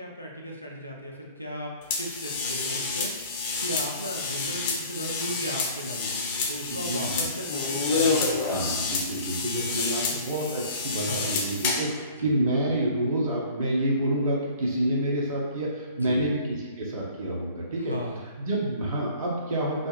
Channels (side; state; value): both; inverted; correlation -0.47